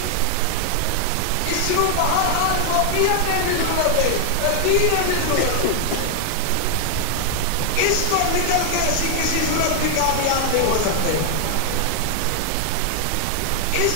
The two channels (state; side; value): different; both; correlation 0.00